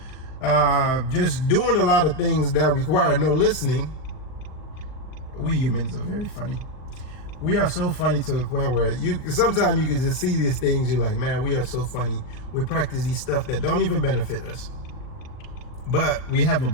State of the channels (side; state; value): right; late; 39 ms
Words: just doing a lot of things that require no listening. We humans are very funny. We are so funny to the point where sometimes you can just see these things, you're like, man, we are so funny. We practice these stuff that don't even benefit us, but we have a